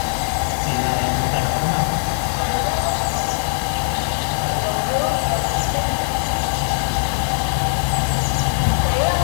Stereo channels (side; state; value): right; silent; 66 dB below the other